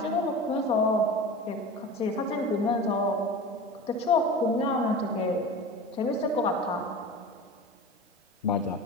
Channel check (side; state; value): both; normal; correlation 0.33